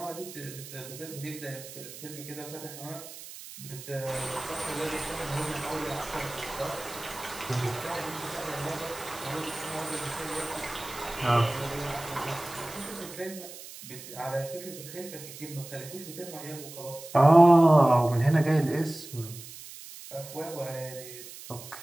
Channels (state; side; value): noise; right; hiss, 14 dB below the sound